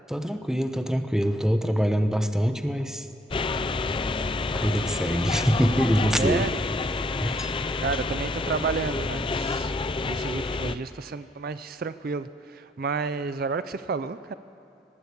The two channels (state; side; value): normal; both; correlation 0.69